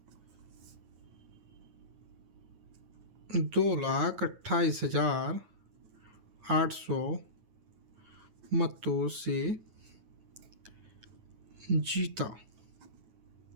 2,28,800 मतों से जीता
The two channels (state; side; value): late; left; 9.2 ms